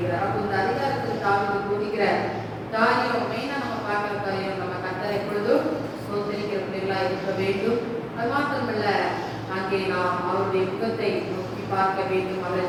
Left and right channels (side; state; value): both; identical; correlation 1.00